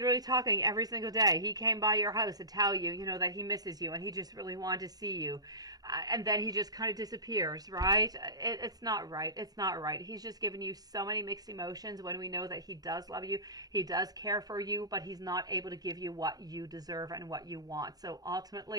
talking every single day. He came by your house to tell you, you know, that he misses you and he just really wanted to see you. And then he just kind of disappears, right? It's not right. It's not right. He's just giving you so many mixed emotions when we know that he does love you. He does care for you, but he's not able to give you what you deserve and what you want. So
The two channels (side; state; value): left; late; 0.19 ms